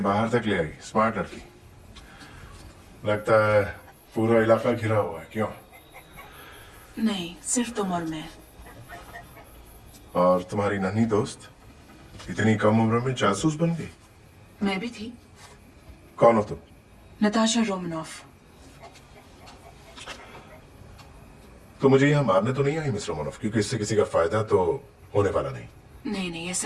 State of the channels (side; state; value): both; identical; correlation 1.00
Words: तक ले आई, स्मार्ट लड़की। लगता है पूरा इलाका घिरा हुआ है। क्यों? नहीं, सिर्फ तुम और मैं। और तुम्हारी नन्ही दोस्त इतनी कम उम्र में जासूस बन गई? मैं भी थी। कौन हो तुम? Natasha Romanoff. तो मुझे यहाँ मारने तो नहीं आई मिस रोमनॉफ, क्योंकि इससे किसी का फायदा तो होने वाला नहीं। नहीं नहीं,